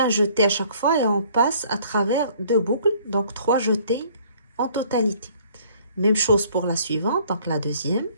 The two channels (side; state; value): both; inverted; correlation -0.58